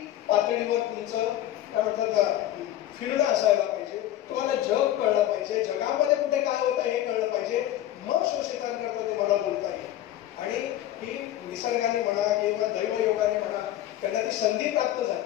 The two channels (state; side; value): quieter; right; 13.0 dB